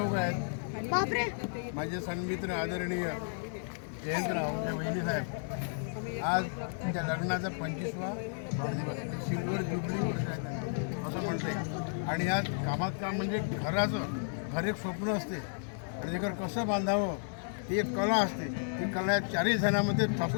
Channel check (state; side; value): silent; right; digital silence